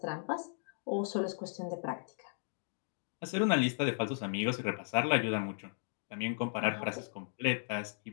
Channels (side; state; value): right; silent; digital silence